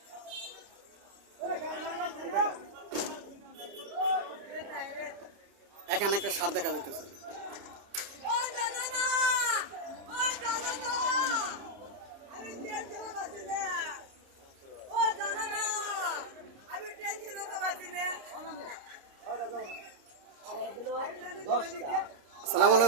এখানে একটা সার দেখা যাইতেছে। আসসালামু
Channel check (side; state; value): left; late; 29 ms